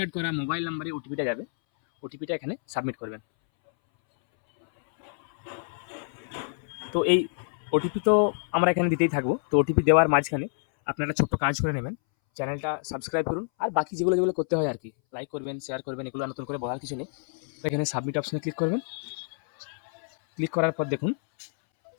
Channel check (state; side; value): silent; right; 60 dB below the other